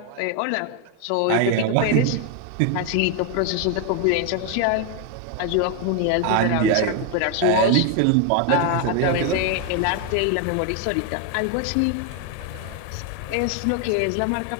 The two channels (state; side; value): different; both; correlation 0.01